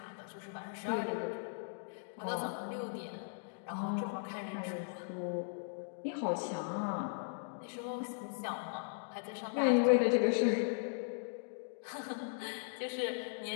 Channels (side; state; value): right; silent; digital silence